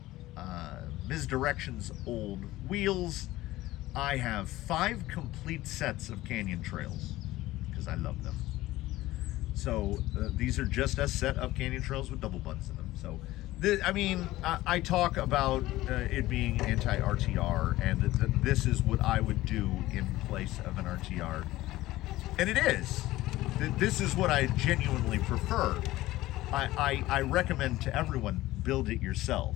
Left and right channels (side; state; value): right; quieter; 16.9 dB